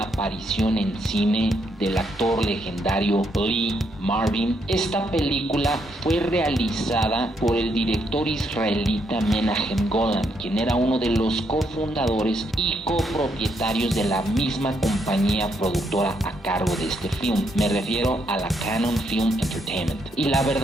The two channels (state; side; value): normal; both; correlation 0.76